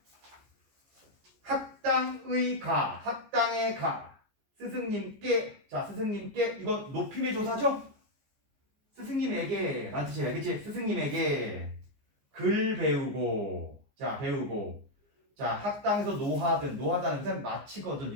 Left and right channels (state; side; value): late; left; 14 ms